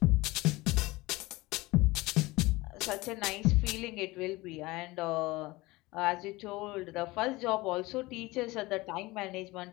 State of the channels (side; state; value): right; quieter; 21.0 dB